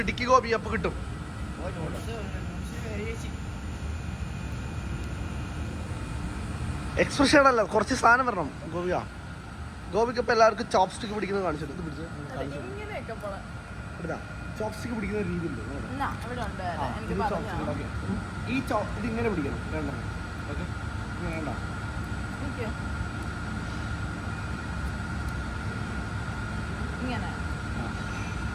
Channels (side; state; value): both; identical; correlation 1.00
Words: ഗോപി, അപ്പൊ കിട്ടും. എക്സ്പ്രഷൻ അല്ല, കുറച്ച് സാധനം വരണം ഗോപിക. ഗോപിക്ക് ഇപ്പൊ എല്ലാവർക്കും ചോപ്സ്റ്റിക്ക് പിടിക്കുന്നത് കാണിച്ചിട്ട് ഇത് പിടിച്ച് ചോപ്സ്റ്റിക്ക് പിടിക്കുന്ന രീതിയില്ലേ ഈ ഇത് ഇങ്ങനെ പിടിക്കണം. വേണ്ട ഓക്കെ, വേണ്ട